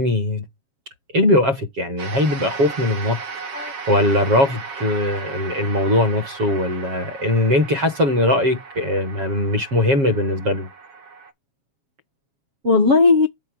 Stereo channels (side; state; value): left; late; 7.3 ms